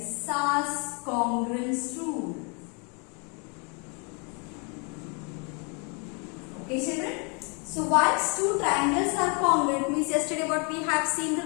SAS congruence rule. Okay, children. So once two triangles are congruent means yesterday what we have seen the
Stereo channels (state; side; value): quieter; right; 34.5 dB